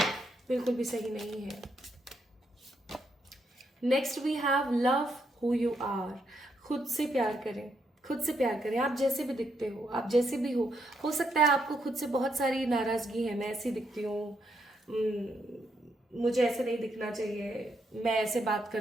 बिल्कुल भी सही नहीं है। Next we have love who you are. खुद से प्यार करें, खुद से प्यार करें। आप जैसे भी दिखते हो, आप जैसे भी हो सकता है आपको खुद से बहुत सारी नाराजगी है। मैं ऐसी दिखती हूँ, मुझे ऐसे नहीं दिखना चाहिए, मैं ऐसे बात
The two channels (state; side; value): normal; both; correlation 0.78